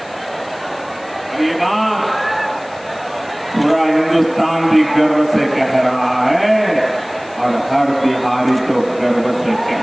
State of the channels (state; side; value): noise; left; hiss, 24 dB below the sound